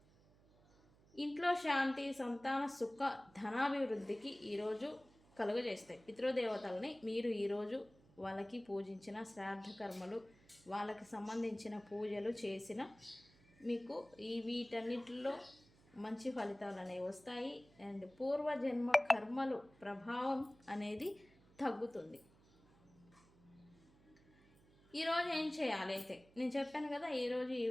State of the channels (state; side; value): noise; right; hum, 28 dB below the sound